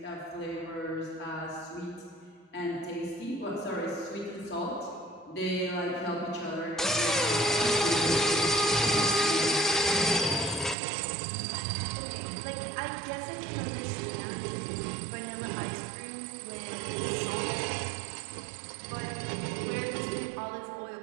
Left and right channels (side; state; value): left; drops out; at 10.8 s